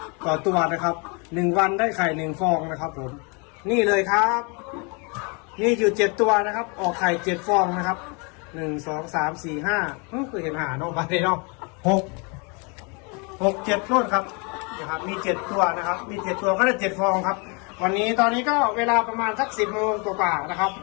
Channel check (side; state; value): right; quieter; 32.5 dB